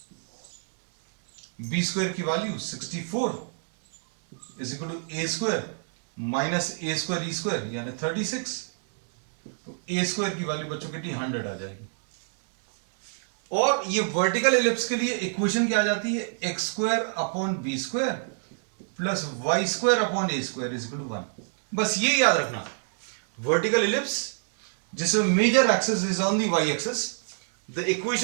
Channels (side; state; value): left; silent; 60 dB below the other